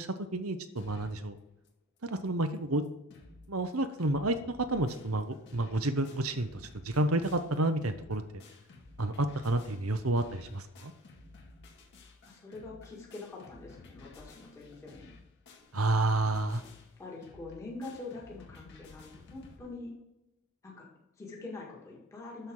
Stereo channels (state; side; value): normal; both; correlation 0.47